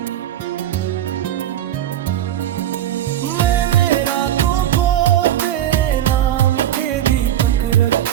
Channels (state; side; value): quieter; left; 11.8 dB